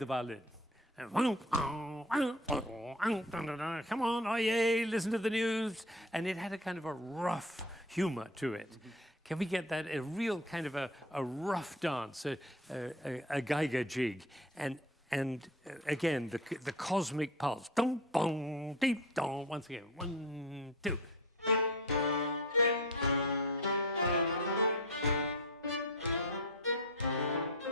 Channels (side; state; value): both; normal; correlation 0.36